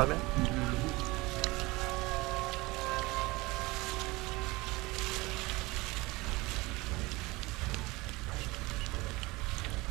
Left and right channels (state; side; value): quieter; left; 22.4 dB